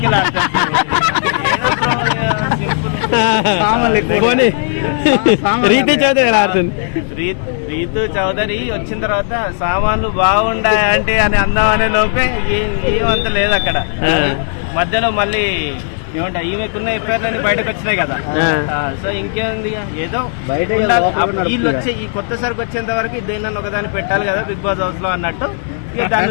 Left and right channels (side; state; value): right; silent; digital silence